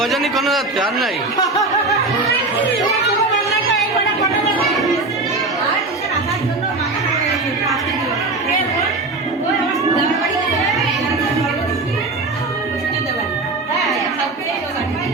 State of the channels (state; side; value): quieter; left; 3.3 dB